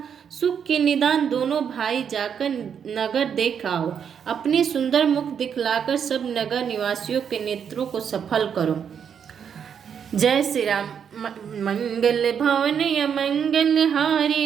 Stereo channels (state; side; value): quieter; left; 7.7 dB